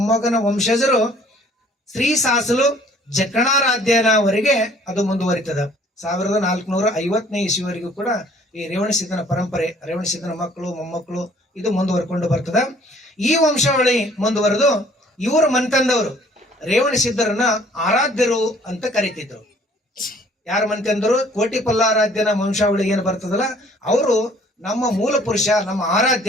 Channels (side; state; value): both; normal; correlation 0.57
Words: ವಂಶಜರು ಶ್ರೀ ಸಾಸಲು ಜಕಣಾರಾಧ್ಯನವರೆಗೆ ಅದು ಮುಂದುವರಿತದ. 1450ನೇ ಇಸ್ವಿವರೆಗೂ ಕೂಡ ಈ ರೇವಣಸಿದ್ಧನ ಪರಂಪರೆ, ರೇವಣಸಿದ್ಧನ ಮಕ್ಕಳು ಮೊಮ್ಮಕ್ಕಳು ಇದು ಮುಂದುವರ್ಕೊಂಡು ಬರ್ತದ. ಈ ವಂಶಾವಳಿ ಮುಂದುವರೆದು ಇವರು ಮನ್ತಂದವರು ರೇವಣಸಿದ್ಧರನ್ನ ಆರಾಧ್ಯರು ಅಂತ ಕರೀತಿದ್ರು. ಯಾರ ಮನ್ತಂದರು? ಕೋಟಿ ಪಲ್ಲಾರಾಧ್ಯನ ವಂಶಾವಳಿ ಏನು ಬರ್ತದಲ್ಲ, ಅವರು ನಮ್ಮ ಮೂಲ ಪುರುಷ, ನಮ್ಮ